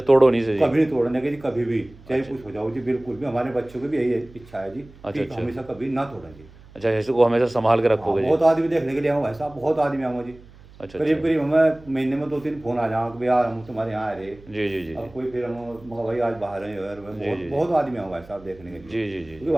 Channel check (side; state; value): right; noise; hum, 22 dB below the sound